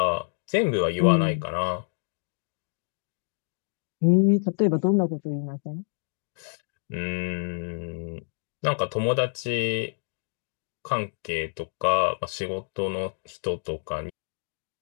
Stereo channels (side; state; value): right; silent; 59 dB below the other